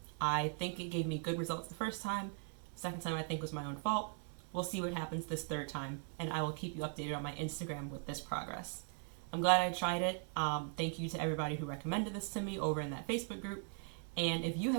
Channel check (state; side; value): silent; left; 51 dB below the other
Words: I think it gave me good results the first time. Second time I think was my own fault. We'll see what happens this third time, and I will keep you updated on my Instagram with this progress. I'm glad I tried it. Thank you to everybody who recommended this to me over in that Facebook group. And if you